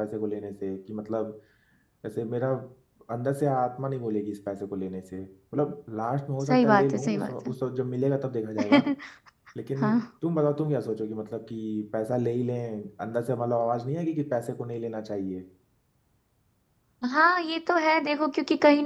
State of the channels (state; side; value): identical; both; correlation 1.00